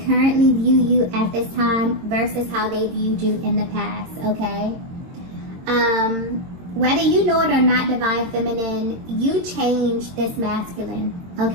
currently view you at this time versus how they viewed you in the past, okay? Whether you know it or not, Divine Feminine, you changed this masculine,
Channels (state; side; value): late; left; 22 ms